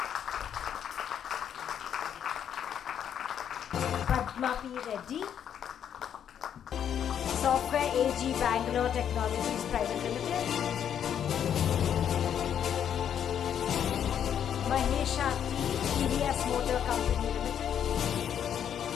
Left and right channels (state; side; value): quieter; right; 9.0 dB